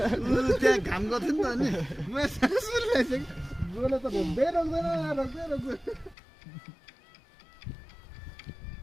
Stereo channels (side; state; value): right; drops out; at 6.2 s